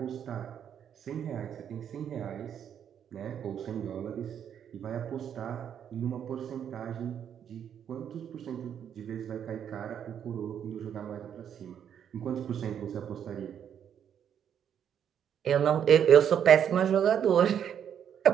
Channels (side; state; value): left; quieter; 8.8 dB